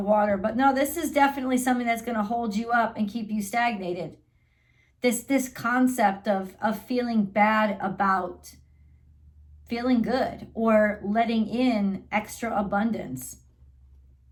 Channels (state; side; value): identical; both; correlation 1.00